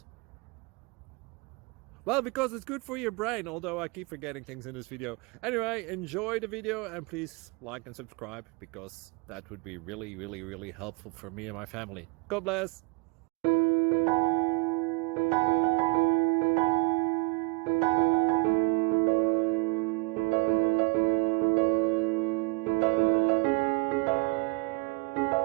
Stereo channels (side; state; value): left; quieter; 28.3 dB